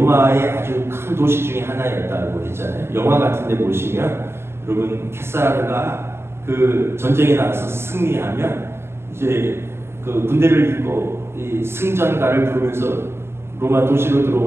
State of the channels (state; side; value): late; left; 0.12 ms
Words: 아주 큰 도시 중에 하나였다고 했잖아요. 영화 같은 데 보시면 여러분 케사르가 그 전쟁에 나가서 승리하면 이제 그 군대를 입고 이 승전가를 부르면서 로마 도시로